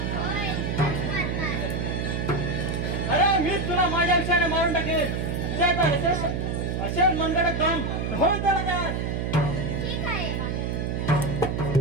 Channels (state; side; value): noise; right; hum, 1 dB below the sound